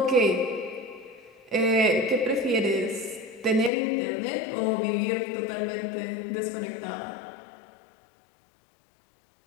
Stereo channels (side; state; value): right; drops out; at 3.7 s